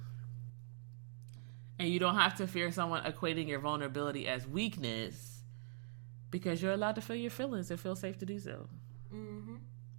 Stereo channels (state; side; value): silent; left; digital silence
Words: And you don't have to fear someone equating your vulnerability as weakness, because you're allowed to feel your feelings and feel safe to do so. Mm-hmm.